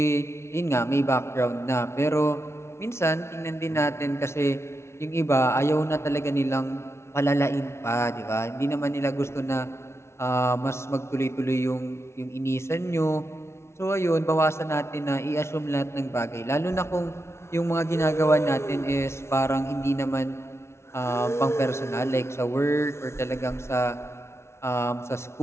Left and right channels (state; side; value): late; right; 0.13 ms